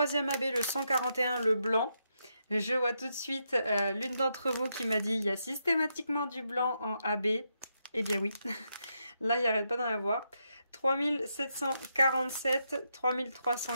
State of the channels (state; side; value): inverted; both; correlation -0.82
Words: AB, le 141, le blanc. Je vois tout de suite l'une d'entre vous qui m'a dit il y a systématiquement du blanc en AB. Eh bien oui, là il n'y arrête pas d'en avoir. 3747,